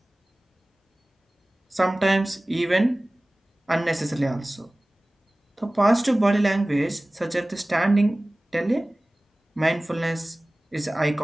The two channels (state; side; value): normal; both; correlation 0.98